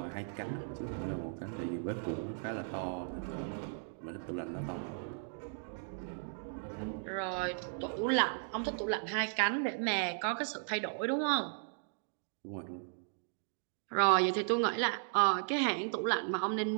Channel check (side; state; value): left; silent; digital silence